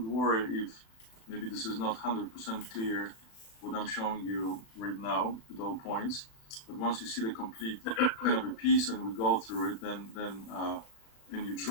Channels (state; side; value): late; right; 36 ms